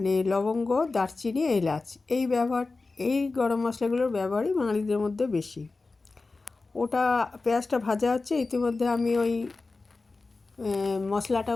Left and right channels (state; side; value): quieter; right; 3.7 dB